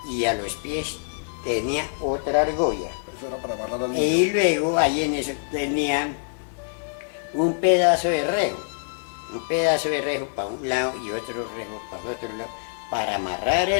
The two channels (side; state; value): right; silent; 62 dB below the other